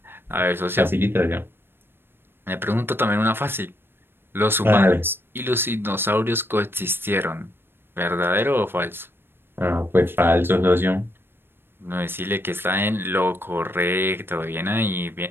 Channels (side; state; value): left; late; 0.10 ms